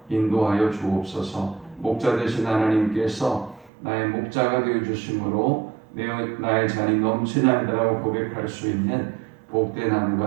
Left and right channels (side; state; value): left; drops out; at 3.7 s